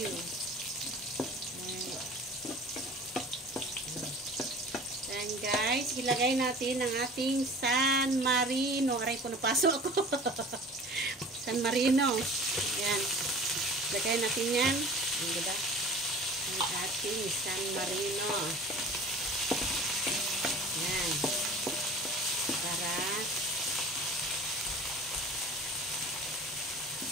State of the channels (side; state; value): both; normal; correlation 0.42